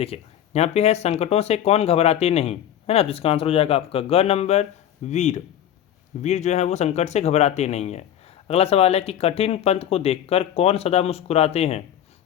यहाँ पे है संकटों से कौन घबराते नहीं, है ना, तो इसका आंसर हो जाएगा आपका ग नंबर, वीर। वीर जो है वो संकट से घबराते नहीं है। अगला सवाल है कि कठिन पंथ को देखकर कौन सदा मुस्कुराते हैं,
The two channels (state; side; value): quieter; right; 10.4 dB